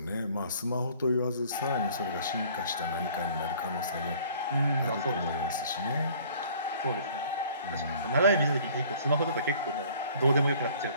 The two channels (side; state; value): both; inverted; correlation -0.53